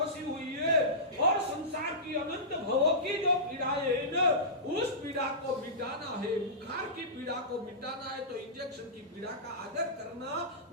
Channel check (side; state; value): both; normal; correlation -0.19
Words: हुई है, और संसार की अनंत भवों की जो पीड़ाएं है ना, उस पीड़ा को मिटाना है, बुखार की पीड़ा को मिटाना है, तो इंजेक्शन की पीड़ा का आदर करना